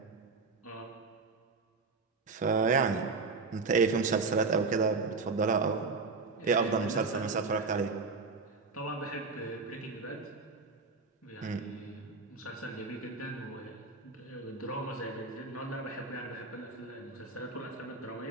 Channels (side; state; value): left; quieter; 4.3 dB